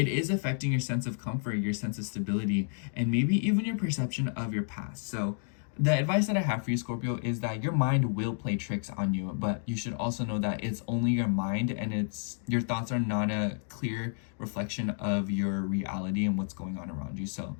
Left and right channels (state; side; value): silent; right; 57 dB below the other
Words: affecting your sense of comfort, your sense of stability, and maybe even your perception of your past. So the advice that I have for you, Scorpio, is that your mind will play tricks on you, but you should also know that it's only your mind, and your thoughts are not a clear reflection of your reality and what's going on around you. So